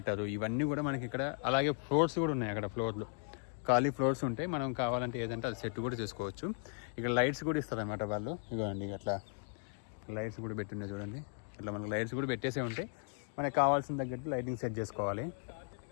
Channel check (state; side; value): silent; right; 53 dB below the other